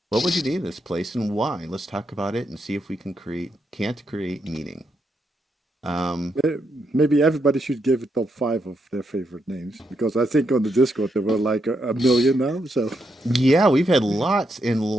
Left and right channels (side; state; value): both; normal; correlation 0.81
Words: What would you name this place and why? Let's talk about it and see if we can't create meaning. Maybe everybody should give a top 5 of their favorite names, because I think on the Discord there were like a million now. So Yeah, we've had lots and